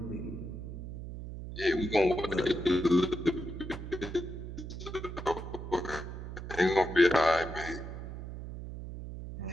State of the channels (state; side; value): noise; right; hum, 9 dB below the sound